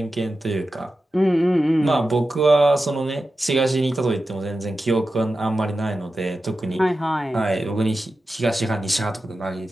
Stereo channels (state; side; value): normal; both; correlation 0.92